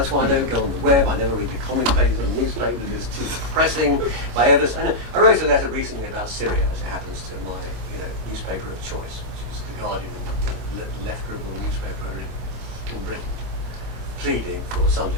why I don't go on the web, I never read the comment pages on newspapers, it's too depressing. I wrote a letter recently about Syria, as it happens, to my, newspaper of choice, which is The Guardian, left liberal newspaper in Britain, pleading for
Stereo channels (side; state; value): left; late; 25 ms